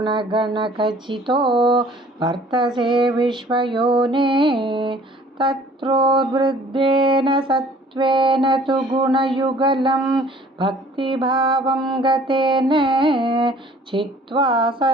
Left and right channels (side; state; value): both; normal; correlation 0.53